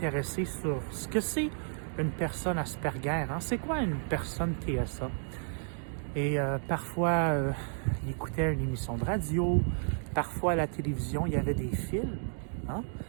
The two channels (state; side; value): silent; left; 56 dB below the other